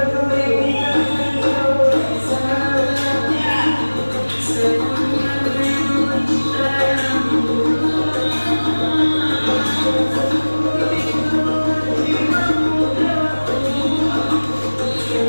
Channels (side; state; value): both; inverted; correlation -1.00